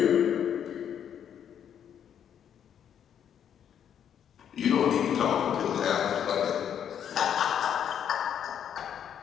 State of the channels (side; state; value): right; quieter; 9.0 dB